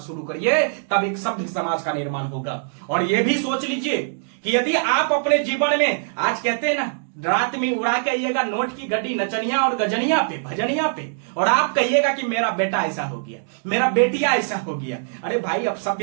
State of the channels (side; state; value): left; silent; digital silence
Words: करिए, तब एक सभ्य समाज का निर्माण होगा। और यह भी सोच लीजिए कि यदि आप अपने जीवन में, आज कहते हैं ना रात में उड़ा के आइएगा नोट की गड्डी नचनिया और गजनिया पे, भजनिया पे, और आप कहिएगा कि मेरा बेटा ऐसा हो गया, मेरा बेटिया ऐसा हो गया। अरे भाई, अब